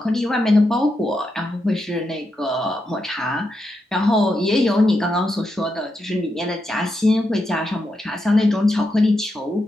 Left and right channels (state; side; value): normal; both; correlation 0.85